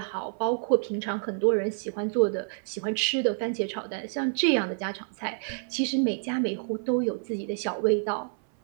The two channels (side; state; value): left; silent; 57 dB below the other